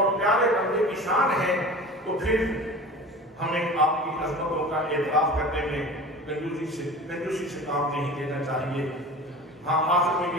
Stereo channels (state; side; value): normal; both; correlation 0.36